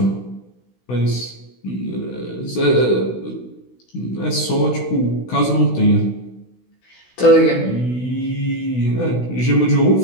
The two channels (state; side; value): late; right; 16 ms